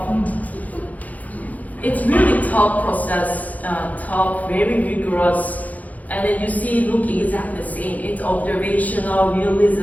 It's really tough process, tough, very rigorous, and then you see look exactly the same. It's observational,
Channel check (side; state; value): right; late; 0.077 ms